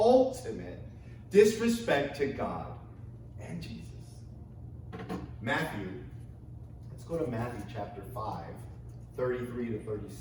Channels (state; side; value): identical; both; correlation 1.00